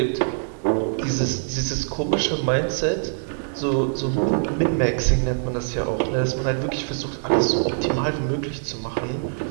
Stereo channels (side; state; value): left; silent; digital silence